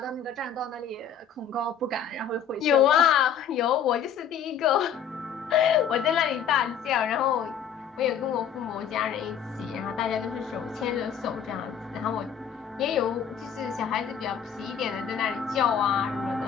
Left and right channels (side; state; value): right; quieter; 7.8 dB